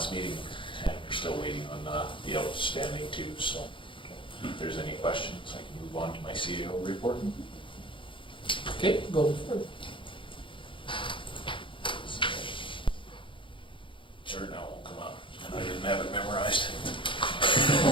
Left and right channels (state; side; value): late; right; 0.25 ms